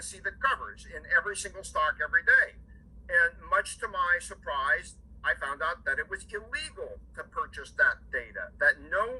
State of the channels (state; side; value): identical; both; correlation 1.00